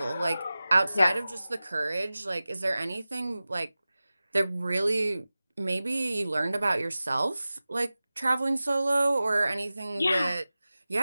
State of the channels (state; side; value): inverted; both; correlation -0.96